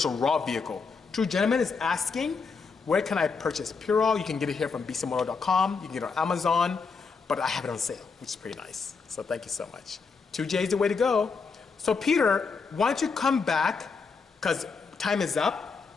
a raw vehicle. True Gentleman is asking, where can I purchase PurOl? You can get it here from Bisimoto.com. You can get it on Amazon, but I have it on sale, which is pretty nice. So thank you so much. 2J is the way to go. So Peter, why don't you come back, because time is up,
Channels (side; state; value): right; quieter; 5.0 dB